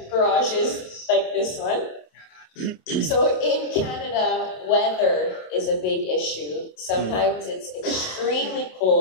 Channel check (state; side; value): late; right; 27 ms